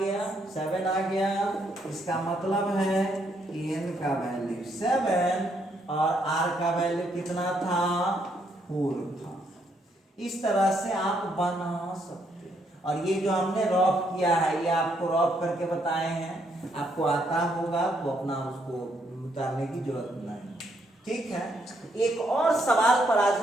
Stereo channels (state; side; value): normal; both; correlation 0.74